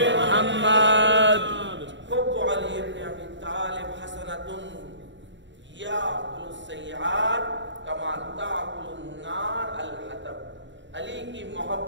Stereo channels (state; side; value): late; left; 0.54 ms